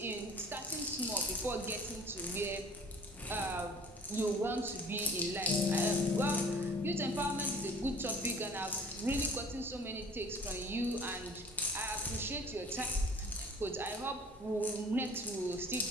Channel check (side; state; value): both; normal; correlation 0.49